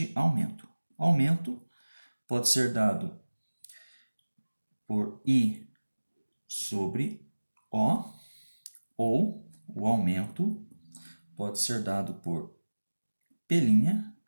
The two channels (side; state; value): both; inverted; correlation -1.00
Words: aumento. Aumento pode ser dado por I sobre O, ou o aumento pode ser dado por P'